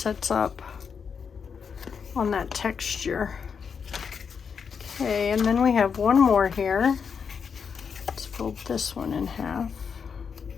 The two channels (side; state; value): right; quieter; 6.3 dB